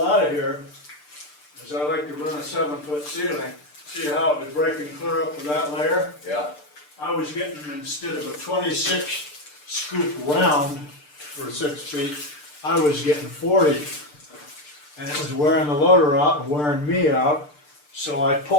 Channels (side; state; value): right; late; 6.7 ms